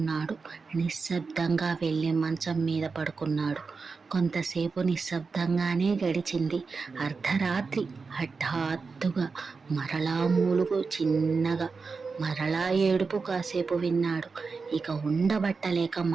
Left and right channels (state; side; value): quieter; left; 4.6 dB